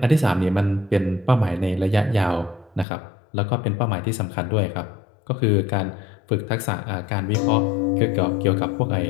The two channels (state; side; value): drops out; right; at 2.9 s